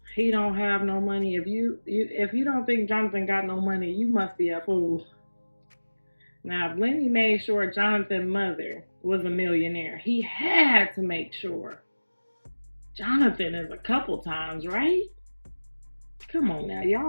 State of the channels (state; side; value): inverted; both; correlation -1.00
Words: He don't have no money. If you don't think Jonathan got no money, you must be a fool. Now, if Lenny made sure Jonathan's mother was a millionaire, he had to make sure Jonathan is a couple times, right? Come on now,